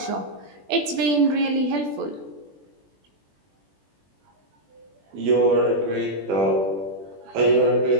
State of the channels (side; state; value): left; late; 20 ms